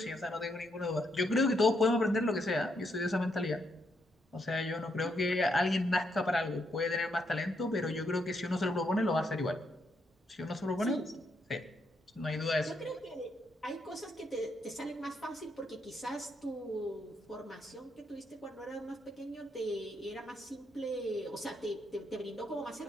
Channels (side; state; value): both; normal; correlation 0.78